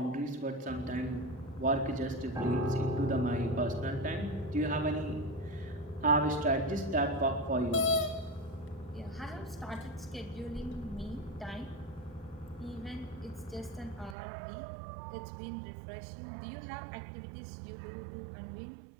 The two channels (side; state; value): left; drops out; at 14.2 s